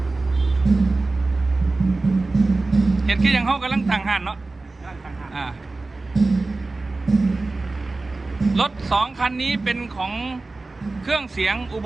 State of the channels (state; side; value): quieter; left; 3.4 dB